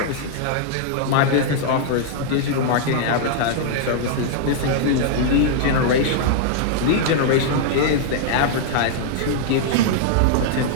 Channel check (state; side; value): different; both; correlation -0.01